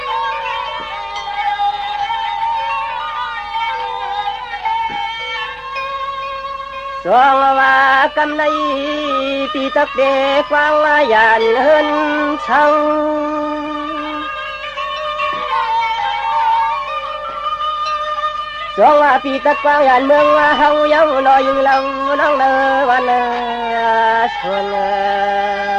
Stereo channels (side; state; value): both; identical; correlation 1.00